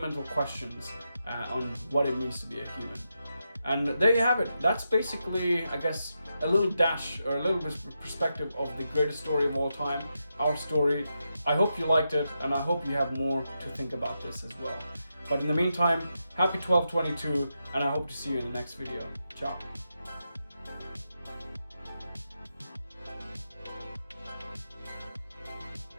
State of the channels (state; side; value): inverted; both; correlation -0.86